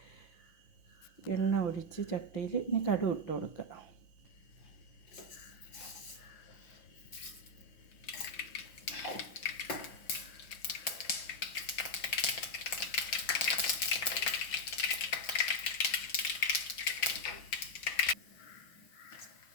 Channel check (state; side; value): late; right; 5.8 ms